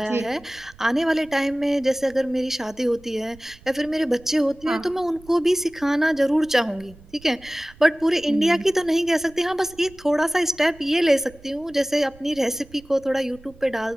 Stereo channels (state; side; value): noise; right; rumble, 24 dB below the sound